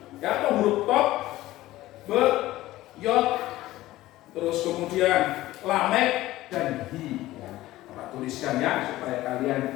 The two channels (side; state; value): right; quieter; 16.4 dB